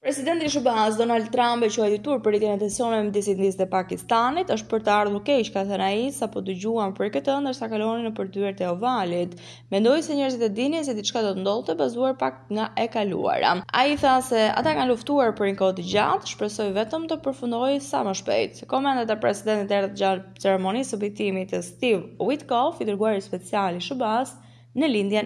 Presidenti i SBA-s Donald Trump e quajti turp për rritjen e tensioneve midis Indisë dhe Pakistanit, është për të ardhur keq, ka thënë ai, sapo dëgjuam për këtë ndërsa kalonin nëpër dyert e ovalit. Mendoi se njerëzit e dinin se diçka do të ndodhte bazuar pak nga e kaluara. Ai tha se ata kanë luftuar për një kohë të gjatë, shpresoi vetëm të përfundojë sa më shpejt. Komentet e presidentit erdhën gjatë ceremonisë së vitimit të Steve Witkoff, i dërguari special i SBA-s në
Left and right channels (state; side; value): identical; both; correlation 1.00